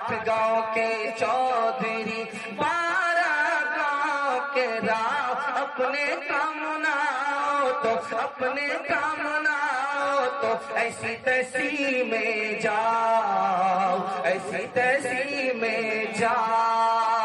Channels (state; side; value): identical; both; correlation 1.00